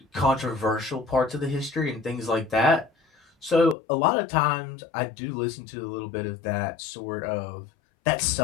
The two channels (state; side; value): drops out; right; at 3.8 s